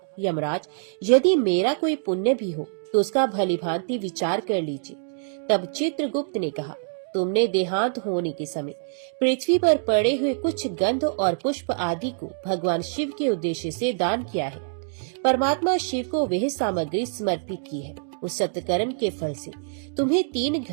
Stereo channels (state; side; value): silent; left; digital silence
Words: यमराज, यदि मेरा कोई पुण्य भी हो तो उसका भलीभांति विचार कर लीजिए। तब चित्रगुप्त ने कहा, तुमने देहांत होने के समय पृथ्वी पर पड़े हुए कुछ गंध और पुष्प आदि को भगवान शिव के उद्देश्य से दान किया है। परमात्मा शिव को वह सामग्री समर्पित की है। उस सत्कर्म के फल से तुम्हें 3